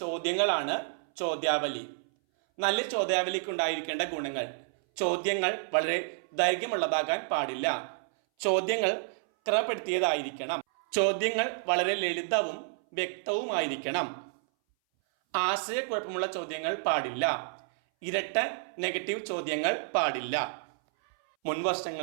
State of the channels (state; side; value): silent; left; 58 dB below the other